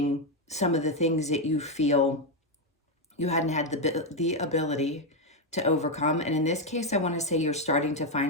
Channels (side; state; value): both; normal; correlation 0.05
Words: some of the things that you feel you hadn't had the ability to overcome. And in this case, I want to say you're starting to